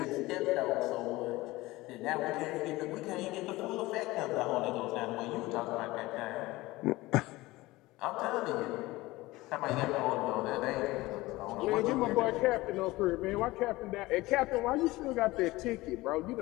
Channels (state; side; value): quieter; right; 19.6 dB